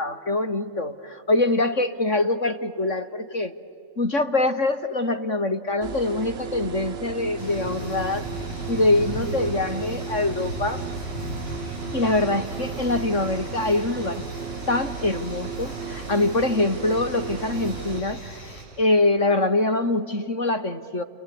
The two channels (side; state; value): right; late; 3.6 ms